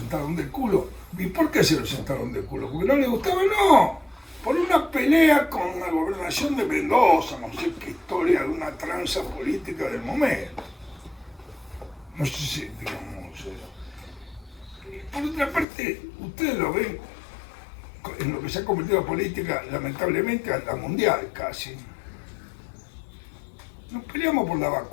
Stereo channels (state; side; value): drops out; right; at 15.7 s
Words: de culo. ¿Y por qué se lo sentaron de culo? ¿Porque no les gustaba? No. Por una pelea con la gobernación de Mendoza, no sé qué historia de una tranza política del momento. No sé si, digamos... Por otra parte, ustedes lo ven en lo que se ha convertido la política, lamentablemente, a la mundial casi. Nos peleamos por la